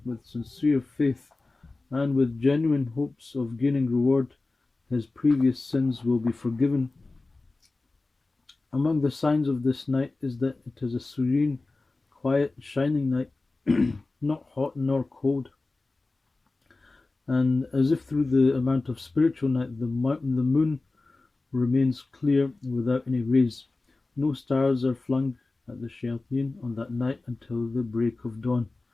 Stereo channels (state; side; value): quieter; right; 3.3 dB